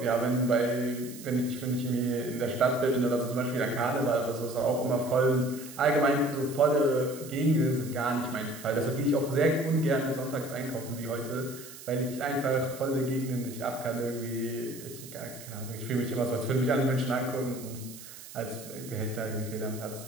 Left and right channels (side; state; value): right; noise; hiss, 15 dB below the sound